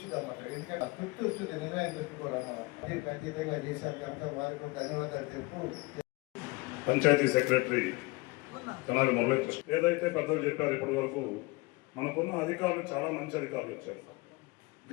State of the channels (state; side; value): quieter; right; 23.8 dB